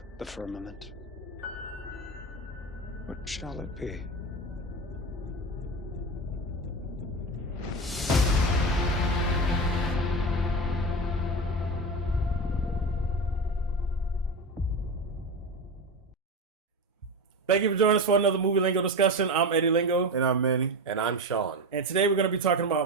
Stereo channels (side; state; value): both; normal; correlation 0.20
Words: the firmament. What shall it be? Thank you for joining us for another Movie Lingo discussion. I'm Eddie Lingo. And I'm Manny. And I'm Sean. And today we're going to be talking